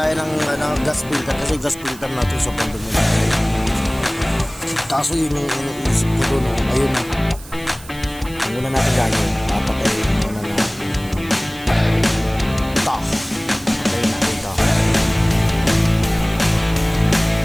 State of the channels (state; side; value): noise; right; hiss, 19 dB below the sound